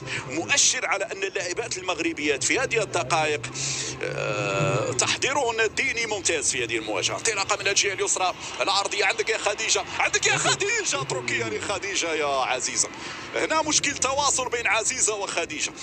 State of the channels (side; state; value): both; identical; correlation 1.00